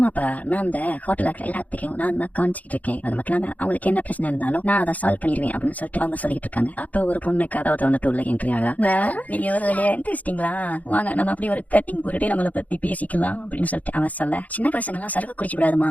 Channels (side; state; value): right; late; 0.075 ms